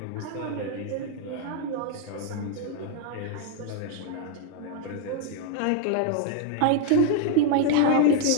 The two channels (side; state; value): both; different; correlation 0.00